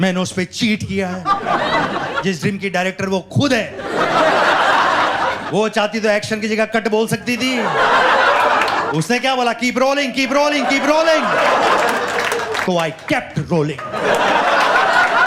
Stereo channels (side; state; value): both; identical; correlation 1.00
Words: मैंने उस पर चीट किया है। जिस ड्रीम की डायरेक्टर वो खुद है। वो चाहती तो एक्शन की जगह कट बोल सकती थी। उसने क्या बोला? Keep rolling, keep rolling, keep rolling. तो आई केप्ट रोलिंग।